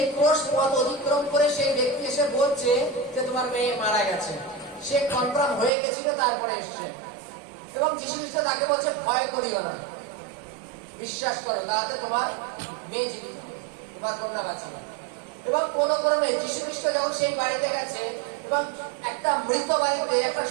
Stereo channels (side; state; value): left; drops out; at 5.7 s